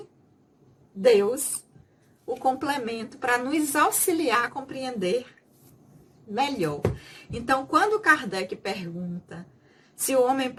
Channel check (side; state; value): both; identical; correlation 1.00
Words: Deus, o complemento para nos auxiliar a compreender melhor. Então, quando Kardec pergunta se o homem